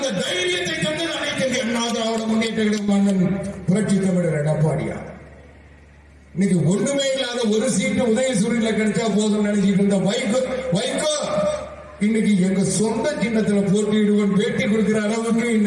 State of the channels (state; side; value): identical; both; correlation 1.00